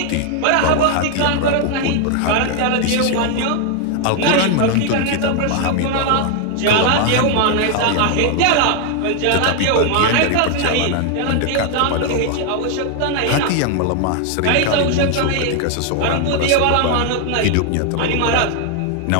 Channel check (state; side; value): different; both; correlation 0.00